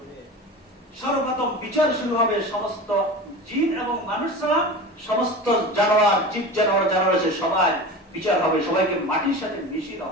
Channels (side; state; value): both; normal; correlation 0.31